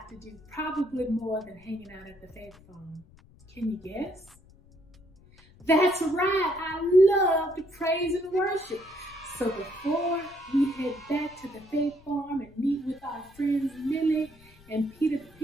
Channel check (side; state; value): left; noise; rumble, 26 dB below the sound